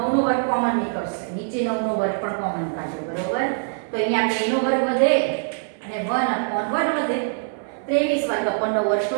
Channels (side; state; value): left; silent; 60 dB below the other